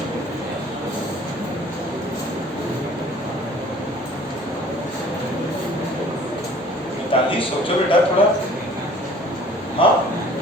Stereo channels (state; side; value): normal; both; correlation 0.51